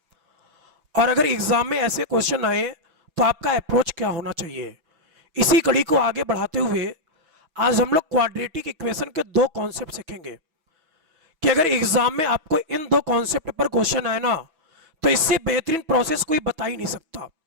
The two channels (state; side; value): late; left; 6.1 ms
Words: और अगर एग्जाम में ऐसे क्वेश्चन आए तो आपका अप्रोच क्या होना चाहिए। इसी कड़ी को आगे बढ़ाते हुए आज हम लोग क्वाड्रेटिक इक्वेशन के दो कॉन्सेप्ट सीखेंगे कि अगर एग्जाम में आपको इन दो कॉन्सेप्ट पर क्वेश्चन आए ना, तो इससे बेहतरीन प्रोसेस कोई बता ही नहीं सकता,